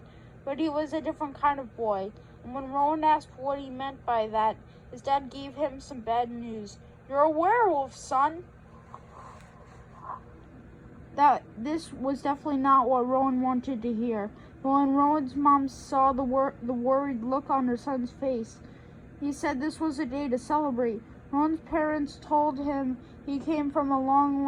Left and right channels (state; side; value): identical; both; correlation 1.00